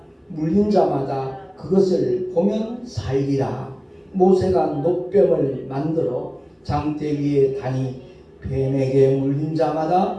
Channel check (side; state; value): both; identical; correlation 1.00